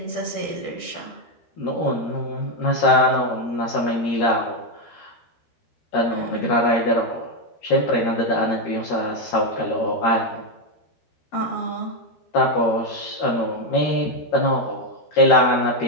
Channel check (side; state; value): right; late; 13 ms